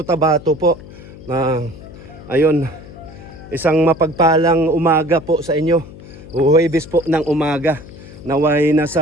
po. Ayun, isang mapagpalang umaga po sa inyo. Huwebes po ng umaga. Naway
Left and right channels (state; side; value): noise; left; hum, 17 dB below the sound